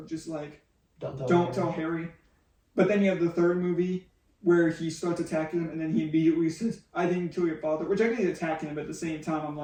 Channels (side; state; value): both; identical; correlation 1.00